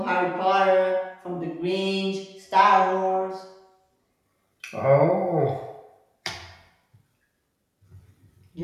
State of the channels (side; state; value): both; identical; correlation 1.00